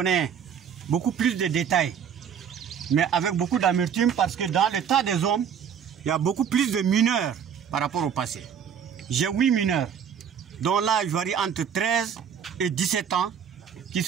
beaucoup plus de détails, mais avec beaucoup d'amertume, parce que dans le tas des hommes, il y a beaucoup plus de mineurs par rapport au passé. J'ai 8 mineurs, dont l'âge varie entre 13 et 17 ans, qui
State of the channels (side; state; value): left; quieter; 7.9 dB